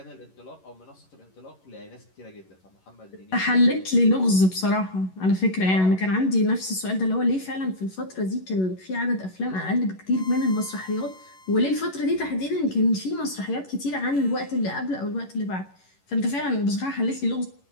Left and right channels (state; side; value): late; right; 11 ms